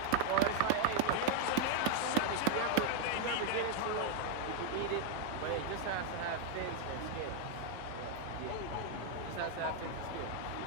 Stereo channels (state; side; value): different; both; correlation 0.00